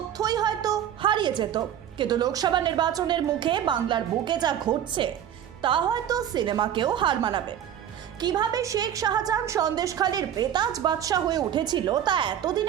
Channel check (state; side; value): quieter; left; 10.1 dB